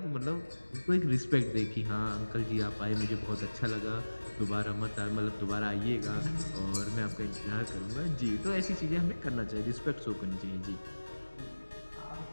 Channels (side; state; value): both; inverted; correlation -1.00